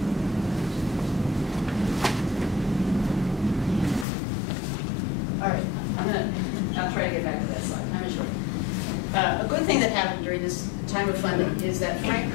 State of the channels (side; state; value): right; drops out; at 4.0 s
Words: All right, I'll try to get back to that slide. Time is short. A good thing that happened during this time of funding is that Frank